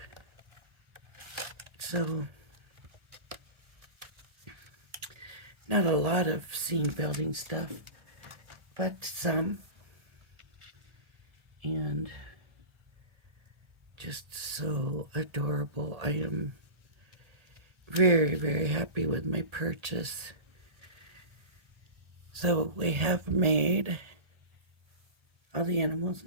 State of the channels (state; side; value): late; left; 1.3 ms